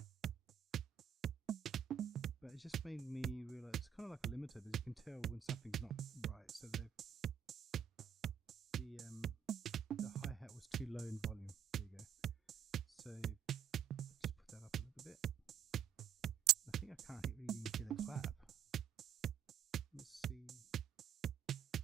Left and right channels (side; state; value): left; quieter; 9.2 dB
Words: But it just made me realize it's kind of like a limiter, because you can tell when something's not right. So the hi-hat was too low in volume. There you go. So just put that up a little bit. I think I can't really even hear the clap. Let's see.